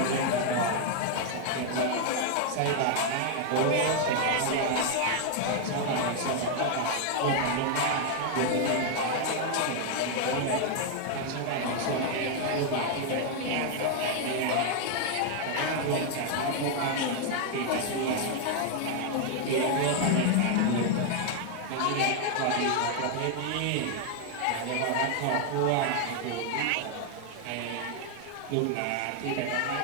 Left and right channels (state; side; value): different; both; correlation 0.00